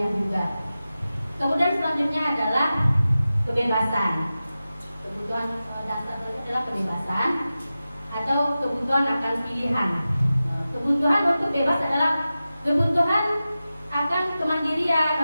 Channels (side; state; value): both; inverted; correlation -0.94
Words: juga. Kemudian selanjutnya adalah kebebasan. Kebutuhan dasar adalah kebebasan atau kebutuhan akan pilihan. Kebutuhan untuk bebas adalah kebutuhan akan